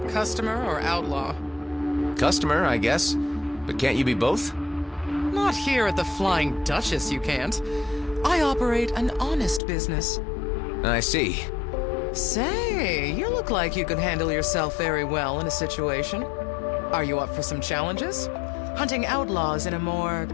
Customer or outlaw? Customer, I guess. But can't you be both? Not here at the Flying Duchess, you can't. I operate an honest business. I see. Say, you look like you could handle yourself very well in a situation. Are you up for some challenges? Hunting outlaws in a more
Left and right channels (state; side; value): drops out; right; at 9.6 s